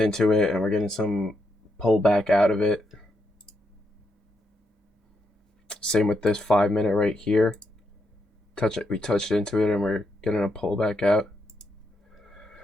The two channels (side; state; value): both; normal; correlation 0.81